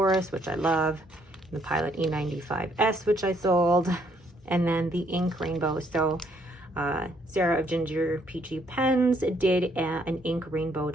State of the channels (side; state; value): both; normal; correlation 0.69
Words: which I love, the Pilot E95S, which I sold, and then the ink rainbow. So Sarah of Ginger Peachy Pens did an ink rainbow